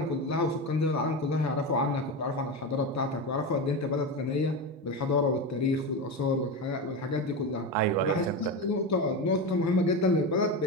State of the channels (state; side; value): normal; both; correlation 0.18